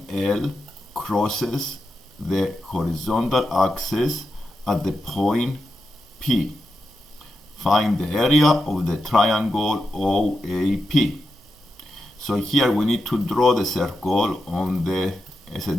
L crosses the horizontal axis at the point P. Find the area of the triangle OAP. So here we need to draw the circle on a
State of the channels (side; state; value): both; normal; correlation 0.88